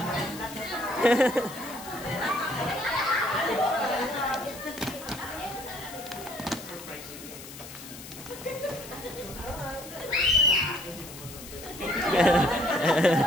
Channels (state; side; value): noise; left; hiss, 14 dB below the sound